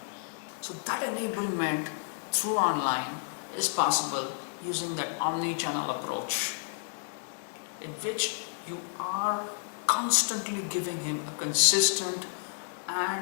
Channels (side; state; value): right; silent; 57 dB below the other